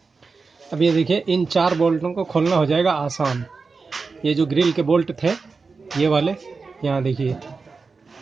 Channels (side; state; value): left; quieter; 4.5 dB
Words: अब ये देखिए इन 4 बोल्टों को खोलना हो जाएगा आसान। ये जो ग्रिल के बोल्ट थे ये वाले, यहाँ देखिए